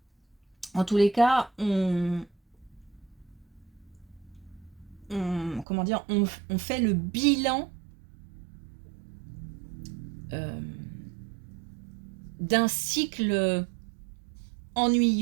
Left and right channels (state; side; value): drops out; left; at 5.7 s